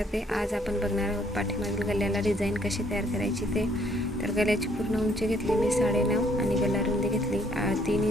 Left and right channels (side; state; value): both; normal; correlation 0.66